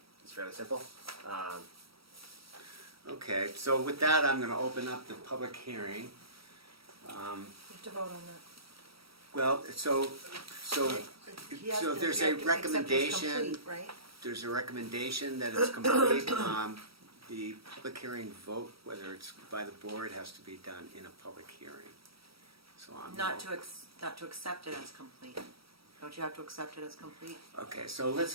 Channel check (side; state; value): left; late; 0.75 ms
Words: simple. Okay, so with that, I'm going to open up the public hearing. You have to vote on that. Well, so He has to- there's you a have to accept it as recommendation, complete, right? there's a recommendation that it's complete. The public hearing vote, whether it's by the board, has to be done in a public hearing. So I'm. Not to accept it as complete. Don't you have to accept it as complete? Okay, so let's